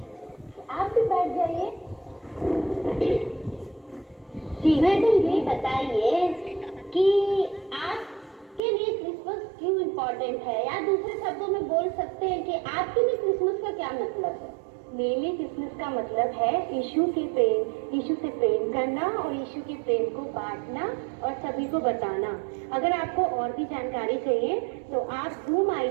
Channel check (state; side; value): drops out; left; at 8.6 s